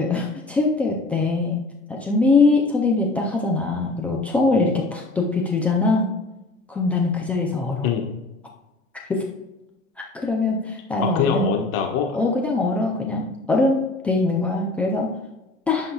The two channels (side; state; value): right; quieter; 3.1 dB